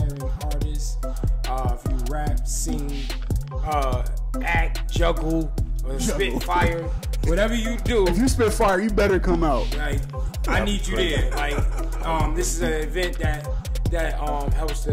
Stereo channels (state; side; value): identical; both; correlation 1.00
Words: artist, if you rap, sing, act, juggle, or spit fire, whatever you do. If you spit fire, you better come out. Like, I need you there. Like, this is an event that helps